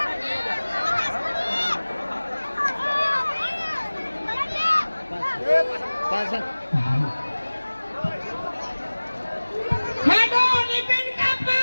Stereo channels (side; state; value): both; inverted; correlation -1.00